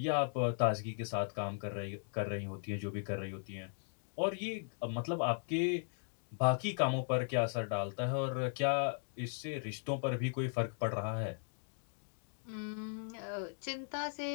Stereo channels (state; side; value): silent; right; digital silence